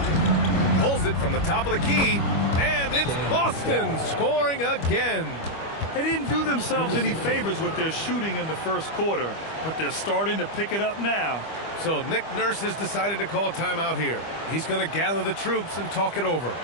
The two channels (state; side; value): late; right; 25 ms